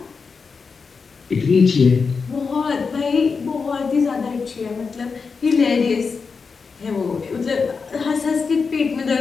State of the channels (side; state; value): right; quieter; 5.1 dB